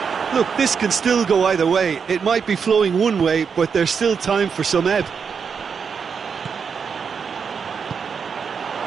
Look, this can still go either way. It might be flowing one way, but there's still time for some ebb.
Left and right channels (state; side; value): quieter; left; 6.2 dB